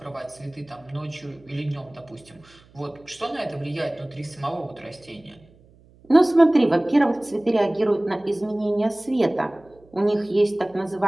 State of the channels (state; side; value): noise; right; hum, 28 dB below the sound